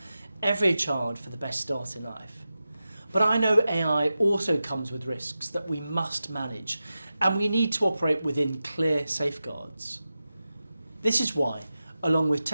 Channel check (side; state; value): both; inverted; correlation -0.93